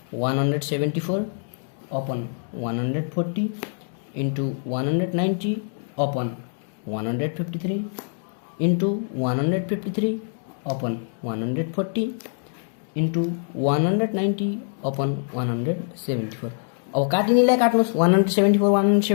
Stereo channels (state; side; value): silent; right; digital silence